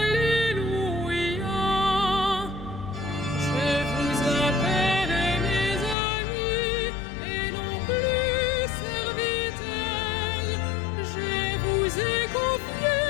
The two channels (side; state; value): right; drops out; at 6.0 s